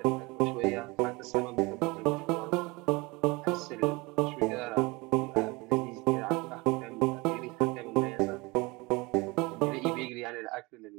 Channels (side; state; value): left; quieter; 25.0 dB